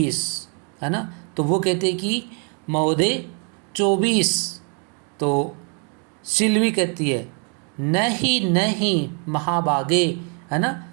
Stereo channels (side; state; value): left; quieter; 38.0 dB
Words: है ना। तो वो कहते हैं कि महोदय 24। तो सिल्वी कहती है नहीं नहीं महाभागे, है ना।